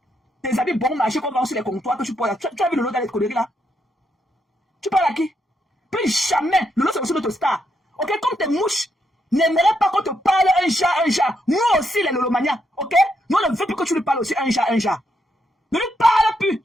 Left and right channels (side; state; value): both; normal; correlation 0.79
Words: Des habits bon marché qu'on vend sur les comptoirs que tu portes là. Tu as vu le lot dans les conneries là? Tu parles à qui? Plus jamais. Lolo, c'est aussi notre star. Ok, comme tes mouches n'aimeraient pas qu'on te parle un chat. Nous aussi, les Lolomania. Ok? Nous, on ne veut plus que tu lui parles aussi un chat. Ne lui parle plus